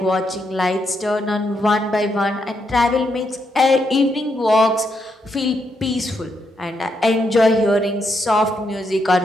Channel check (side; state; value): both; normal; correlation 0.80